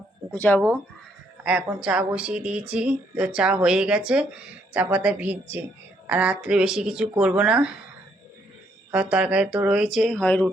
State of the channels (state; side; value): normal; both; correlation 0.71